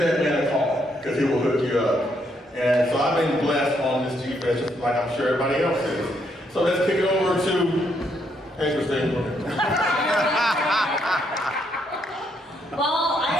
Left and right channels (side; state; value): both; normal; correlation 0.74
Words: man a call, because he will hook you up. And so I've been blessed on this G-Fest, just like I'm sure everybody else is. So let's kick it over to, hey Christine. Well, I